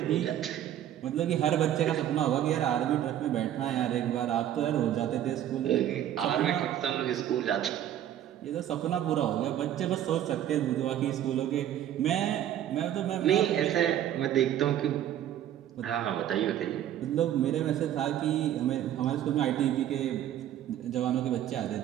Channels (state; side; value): quieter; left; 11.4 dB